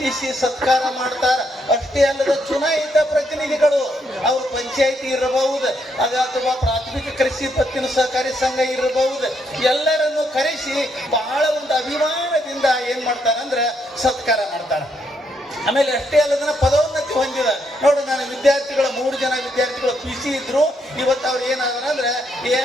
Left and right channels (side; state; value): both; normal; correlation 0.76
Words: ಸತ್ಕಾರ ಮಾಡ್ತಾರ. ಅಷ್ಟೇ ಅಲ್ಲದ ಚುನಾಯಿತ ಪ್ರತಿನಿಧಿಗಳು, ಅವರು ಪಂಚಾಯಿತಿ ಇರಬಹುದು ಅಥವಾ ಪ್ರಾಥಮಿಕ ಕೃಷಿ ಪತ್ತಿನ ಸಹಕಾರಿ ಸಂಘ ಇರಬಹುದು, ಎಲ್ಲರನ್ನು ಕರೆಸಿ ಬಹಳ ಒಂದು ಅಭಿಮಾನದಿಂದ ಏನ್ ಮಾಡ್ತಾರಂದ್ರೆ ಸತ್ಕಾರ ಮಾಡ್ತಾರ. ಆಮೇಲೆ ಅಷ್ಟೇ ಅಲ್ಲದನ್ನ ಪದೋನ್ನತಿ ಹೊಂದಿದ ನೋಡು. ನಾನು ವಿದ್ಯಾರ್ಥಿಗಳು 3 ಜನ ವಿದ್ಯಾರ್ಥಿಗಳು PC ಇದ್ರು, ಇವತ್ತು ಅವ್ರು ಏನಾದ್ರ ಅಂದ್ರೆ